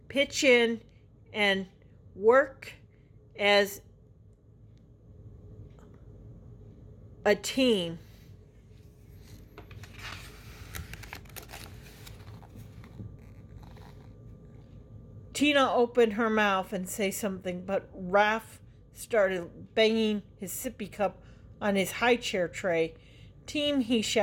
in and work as a team. Tina opened her mouth and say something, but Raph started banging his sippy cup on his high chair tray. Team, he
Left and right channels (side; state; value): both; identical; correlation 1.00